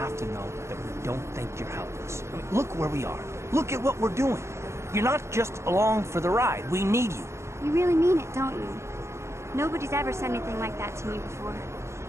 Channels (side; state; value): left; late; 0.13 ms